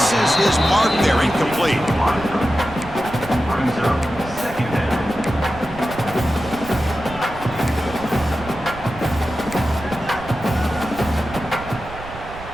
his mark there, incomplete.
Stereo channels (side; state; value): right; noise; rumble, 15 dB below the sound